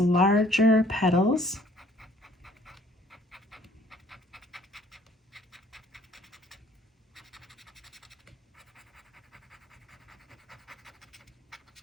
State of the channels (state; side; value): normal; both; correlation 0.58